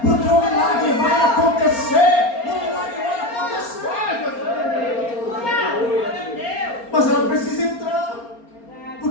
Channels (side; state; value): right; late; 4.3 ms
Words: porque o milagre vai acontecer. O milagre vai acontecer. Mas ela precisa entrar,